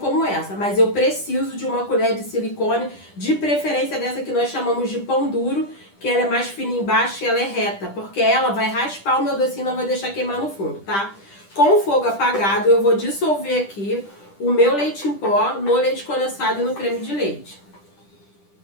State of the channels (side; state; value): right; late; 10 ms